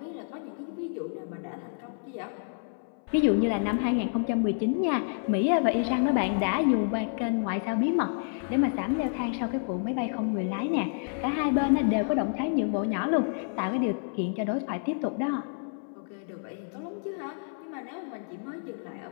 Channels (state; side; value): silent; right; 59 dB below the other